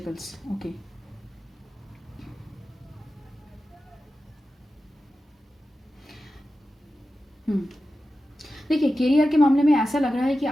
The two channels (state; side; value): normal; both; correlation 0.93